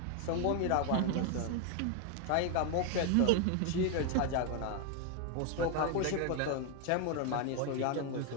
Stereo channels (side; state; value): both; different; correlation 0.01